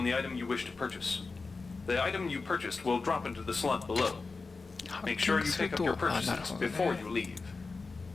the item you wish to purchase. The item you purchased will drop into the slot below. Make sure you pick up your purchases before you leave.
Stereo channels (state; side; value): quieter; right; 4.1 dB